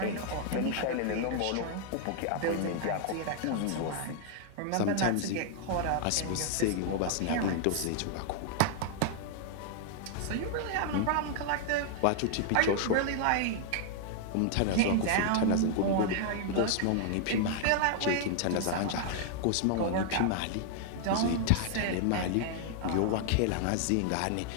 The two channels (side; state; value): both; different; correlation 0.00